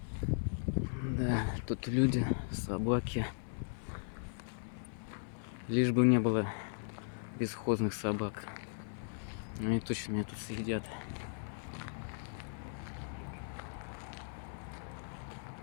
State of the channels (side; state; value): right; silent; 53 dB below the other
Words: Да, тут люди, собаки. Лишь бы не было бесхозных собак. Они точно меня тут съедят.